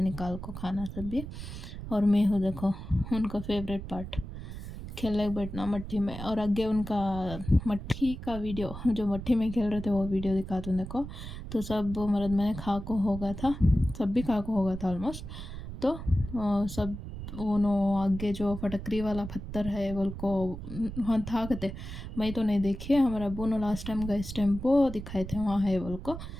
निकाल को खाना सब भी। और मैं हूँ देखो उनका फेवरेट पार्ट खेलने बैठना मट्टी में, और आगे उनका मट्टी का वीडियो जो मट्टी में खेल रहे थे वो वीडियो दिखाता हूँ देखो। तो सब मर्द मैंने खा को होगा था, सब भी खा को होगा था ऑलमोस्ट। तो सब उन्होंने आगे जो फटकरी वाला पत्थर है बोल को वहाँ था कहते, मैं तो नहीं देखी है, हमारे अब्बू ने लास्ट टाइम गए इस टेम्पो दिखाए थे वहाँ है बोल को।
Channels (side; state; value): right; noise; rumble, 9 dB below the sound